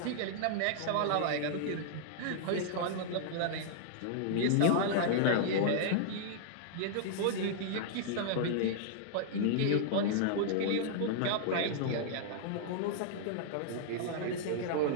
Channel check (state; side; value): different; both; correlation -0.01